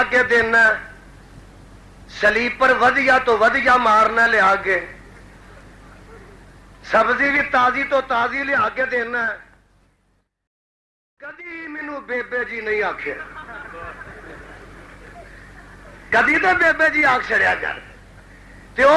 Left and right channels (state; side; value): identical; both; correlation 1.00